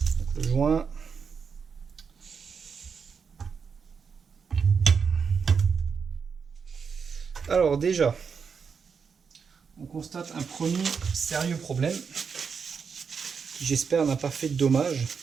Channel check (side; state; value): left; quieter; 6.0 dB